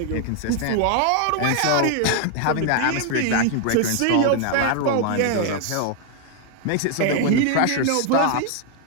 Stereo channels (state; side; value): different; both; correlation 0.00